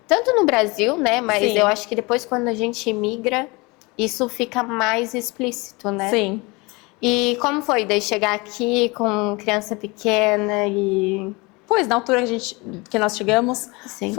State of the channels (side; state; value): right; quieter; 25.7 dB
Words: tanto no Brasil, né? Mas eu acho que depois, quando a gente imigra, isso fica mais explícito, né? Sim. E como foi daí chegar aqui com criança pequena e... Pois, na altura que nós chegamos, Sim.